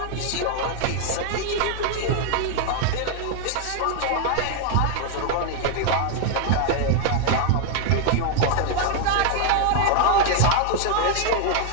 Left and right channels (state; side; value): different; both; correlation 0.00